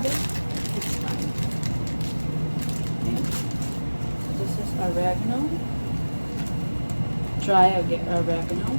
it, it's fine. Okay. This is oregano, dry oregano.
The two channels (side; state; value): both; inverted; correlation -1.00